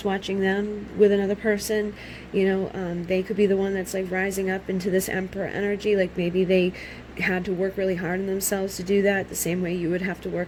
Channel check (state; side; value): identical; both; correlation 1.00